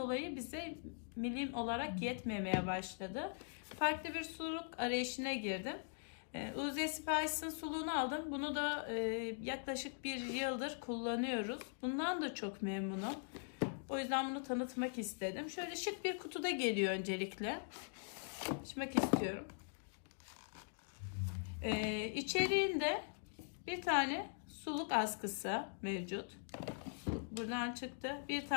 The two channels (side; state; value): right; silent; digital silence